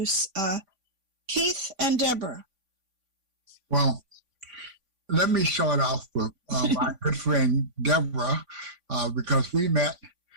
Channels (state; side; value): late; left; 3.5 ms